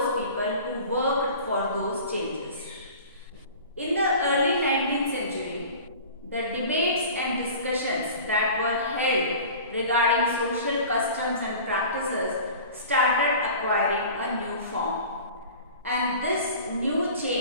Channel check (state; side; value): inverted; both; correlation -0.40